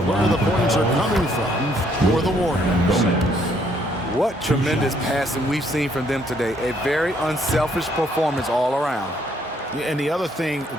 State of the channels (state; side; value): normal; both; correlation 0.68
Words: where the points are coming from for the Warriors. What tremendous passing we've seen from them today. A very unselfish performance all around. And the other thing